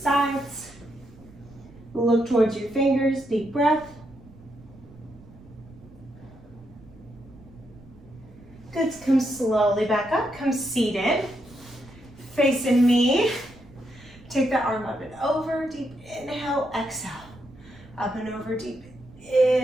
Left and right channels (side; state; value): right; noise; rumble, 22 dB below the sound